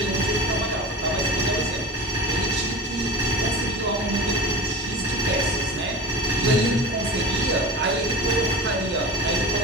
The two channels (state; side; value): normal; both; correlation 0.32